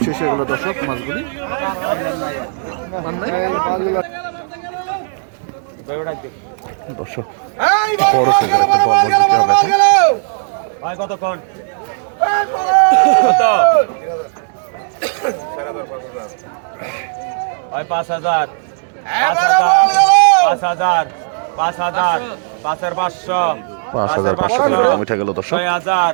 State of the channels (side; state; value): left; silent; digital silence